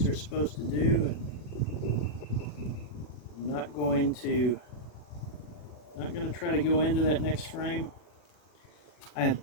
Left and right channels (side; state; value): right; late; 40 ms